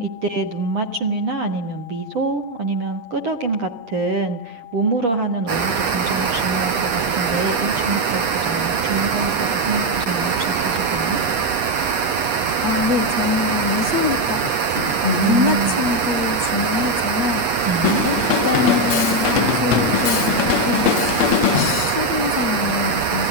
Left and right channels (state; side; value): late; left; 8.5 ms